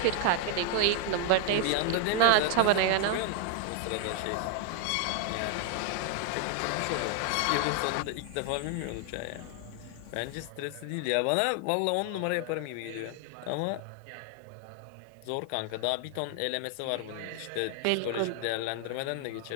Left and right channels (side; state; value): both; different; correlation 0.00